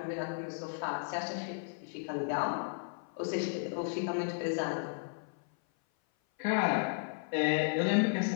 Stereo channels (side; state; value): right; silent; 55 dB below the other